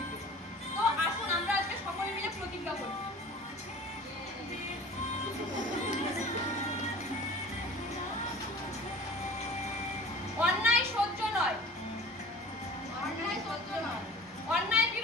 তো আসুন আমরা আজকে সকলে মিলে প্রতিজ্ঞা করি। অন্যায় সহ্য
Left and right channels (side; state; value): both; normal; correlation 0.42